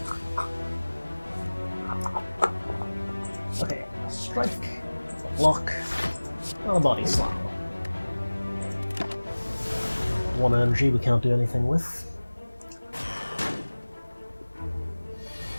Okay, a strike, a block, and a body slam. 1 energy we can't do anything with.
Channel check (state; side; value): inverted; both; correlation -1.00